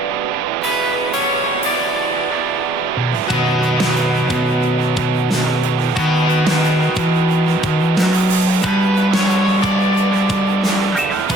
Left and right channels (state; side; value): noise; left; rumble, 26 dB below the sound